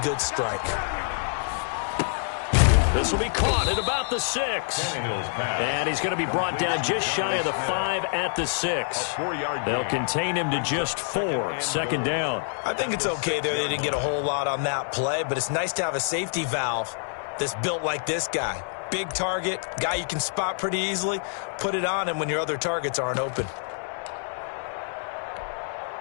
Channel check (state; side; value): silent; right; 60 dB below the other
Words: good strike. This will be caught at about the 6. And he's going to be brought down just shy of the 5 at the 6. They'll contain him to just 4. 2nd down. I think it's okay there. They didn't get a whole lot on that play, but it's nice to have a safety valve that's built like this guy. Big target, guy you can spot pretty easily. Put it on him when your other targets aren't open.